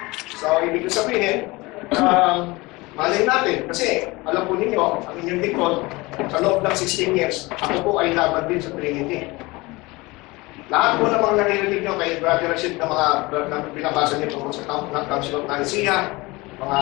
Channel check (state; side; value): quieter; right; 22.9 dB